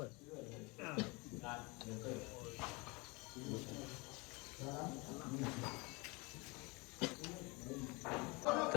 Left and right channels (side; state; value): right; quieter; 26.9 dB